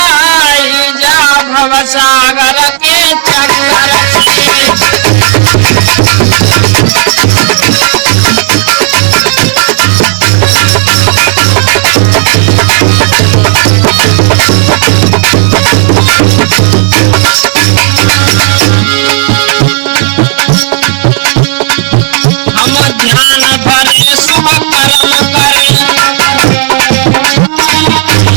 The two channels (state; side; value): silent; left; 57 dB below the other